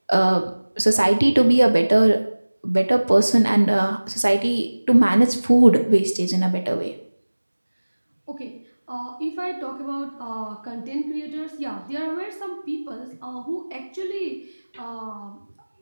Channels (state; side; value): inverted; both; correlation -1.00